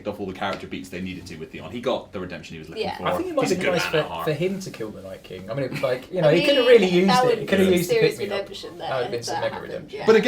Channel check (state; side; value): identical; both; correlation 1.00